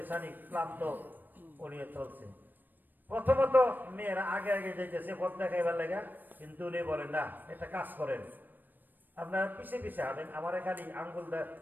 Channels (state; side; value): late; left; 0.090 ms